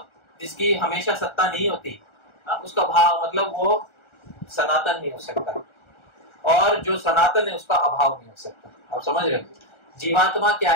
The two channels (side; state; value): right; late; 1.4 ms